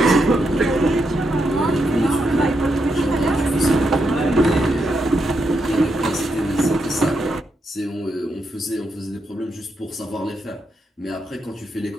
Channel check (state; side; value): normal; both; correlation 0.82